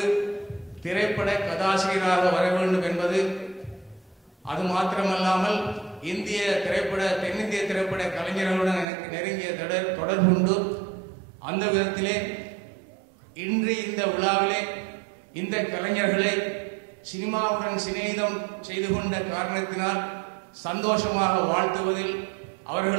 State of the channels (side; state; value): left; drops out; at 8.8 s